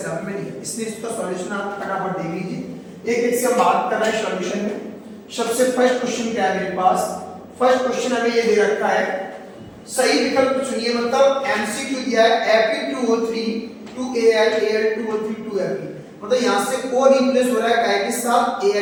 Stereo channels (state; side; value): identical; both; correlation 1.00